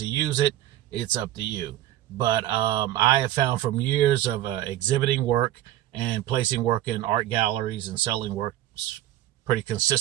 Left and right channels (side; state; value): left; quieter; 13.8 dB